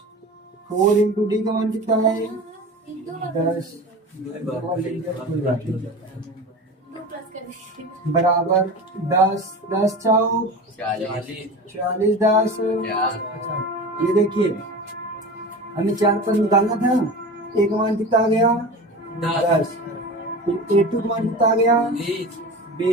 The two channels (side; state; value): both; normal; correlation 0.32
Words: 4 इंटू डी का मान कितना है, 10 बराबर 10। 10 चौक 40 10। ये देखिए, हमें 4 पद निकालना था, ए का मान कितना आ गया, 10। फिर A2 का मान कितना आ गया,